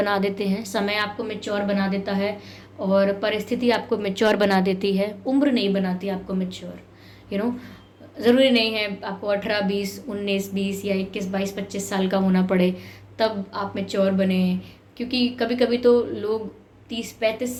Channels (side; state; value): both; identical; correlation 1.00